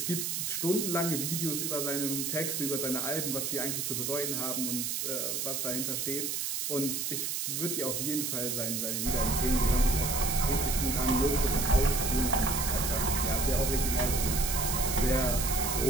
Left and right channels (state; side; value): noise; right; hiss, 1 dB below the sound